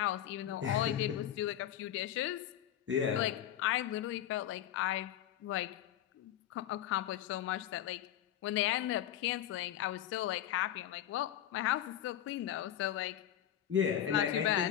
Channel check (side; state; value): right; quieter; 11.3 dB